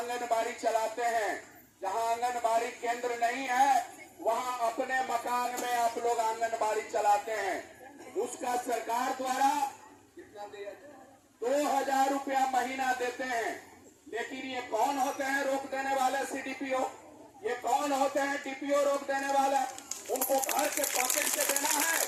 चलाते हैं, जहां आंगनबाड़ी केंद्र नहीं है वहां अपने मकान में आप लोग आंगनबाड़ी चलाते हैं। उसका सरकार द्वारा कितना दिया, 2000 रुपया महीना देते हैं। लेकिन ये कौन होते हैं रोक देने वाले सीडीपीओ? ये कौन होते हैं डीपीओ रोक देने वाला? उनको घर के पॉकेट से देना है?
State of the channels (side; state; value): both; identical; correlation 1.00